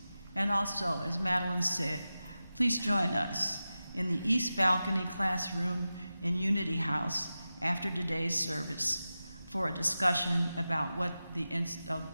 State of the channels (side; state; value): both; inverted; correlation -0.94